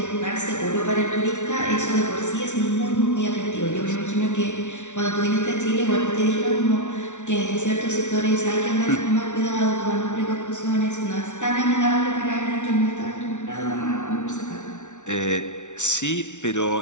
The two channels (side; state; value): right; late; 0.84 ms